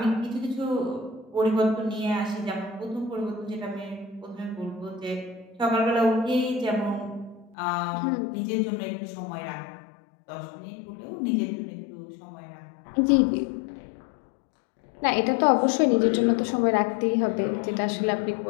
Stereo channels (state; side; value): drops out; right; at 7.6 s